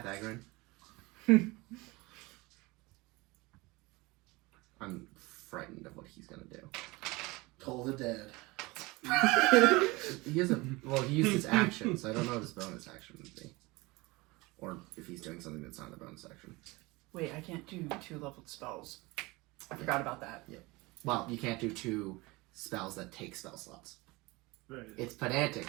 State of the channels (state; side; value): quieter; left; 23.1 dB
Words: I'm frightened of what he's gonna do. Toll the dead. He hasn't. Well, he used his action, so I don't know what his bonus action would be, or if he's doing something that's not a bonus action. Wait, I can't do 2-leveled spells. I forgot about that. Well, you can't do 2 spells that take spell slots. Right. It's pedantic